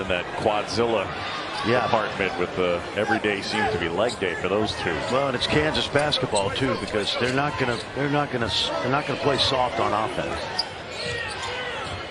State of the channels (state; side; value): identical; both; correlation 1.00